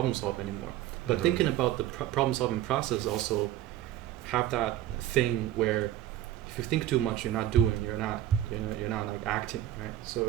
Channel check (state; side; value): quieter; left; 12.5 dB